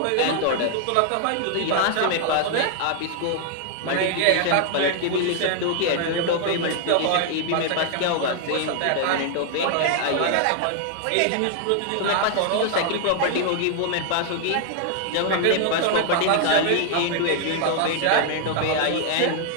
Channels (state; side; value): different; both; correlation 0.00